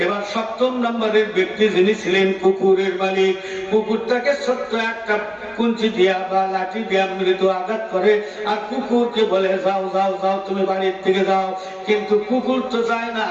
এবার 7 নম্বরের ব্যক্তি যিনি ছিলেন কুকুরের মালিক, কুকুরটাকে ছোট্ট একটা কুঞ্চি দিয়া বা লাঠি দিয়া মৃদু আঘাত করে আর কুকুরকে বলে যাও যাও যাও তুমি বাড়ির থেকে যাও। কিন্তু কুকুর তো যায় না,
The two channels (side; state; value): both; identical; correlation 1.00